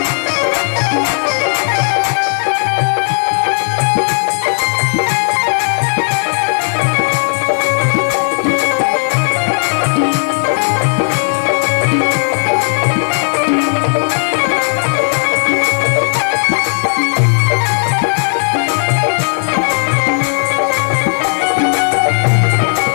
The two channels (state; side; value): silent; right; 70 dB below the other